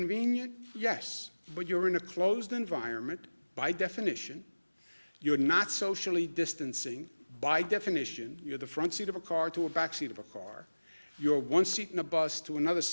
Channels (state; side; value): inverted; both; correlation -1.00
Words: Yes, but you're in a closed environment by definition. You're not socially distancing by definition. You're the front seat of a car to a back seat of a car. You're one seat in a bus to another